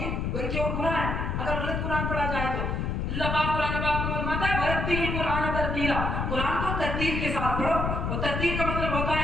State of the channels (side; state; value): left; noise; rumble, 1 dB below the sound